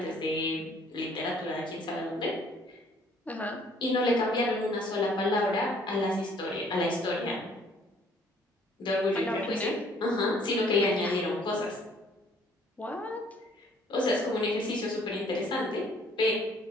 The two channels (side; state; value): both; normal; correlation 0.60